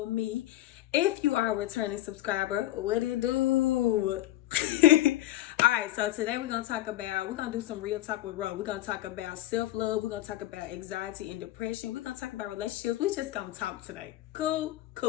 me. If you are a returning subscriber, what it do? Alright, so today we're gonna do some real talk with Ro. We're gonna talk about self-love, we're gonna talk about anxiety and depression, we're gonna talk about relationships. We just gonna talk today. Cool.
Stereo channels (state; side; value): quieter; right; 15.1 dB